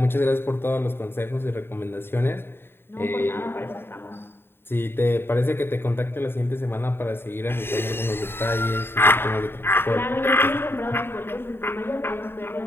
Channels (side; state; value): right; late; 0.11 ms